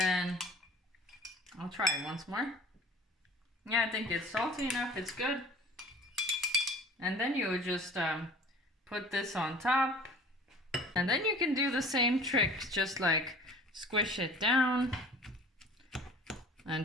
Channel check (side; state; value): both; normal; correlation 0.46